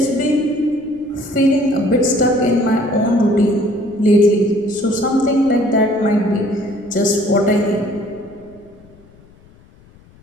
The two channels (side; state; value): left; noise; rumble, 27 dB below the sound